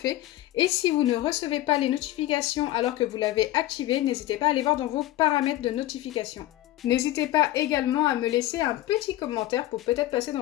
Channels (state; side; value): quieter; right; 15.4 dB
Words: Et si vous ne recevez pas les notifications alors que vous l'avez activé, n'hésitez pas à aller voir dans vos paramètres de notification. N'hésitez pas également à me laisser un petit commentaire pour peut-être passer